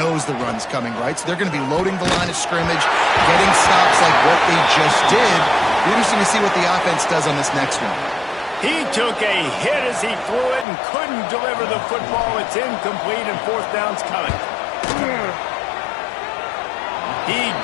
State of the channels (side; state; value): right; drops out; at 10.7 s